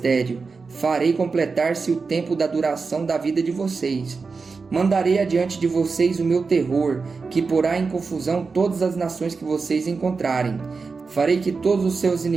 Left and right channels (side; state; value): left; quieter; 4.6 dB